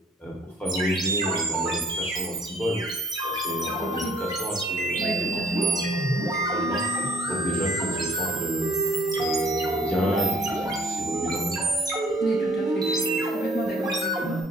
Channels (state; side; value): normal; both; correlation 0.58